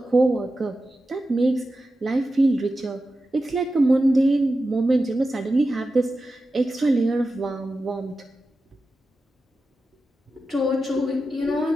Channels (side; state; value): both; normal; correlation 0.92